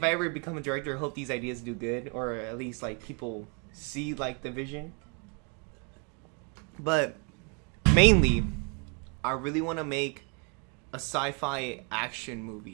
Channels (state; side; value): quieter; left; 36.0 dB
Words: I ever become a director, I hope these ideas do good, or at least like people see like the vision. But mainly, I really want to make a sci-fi action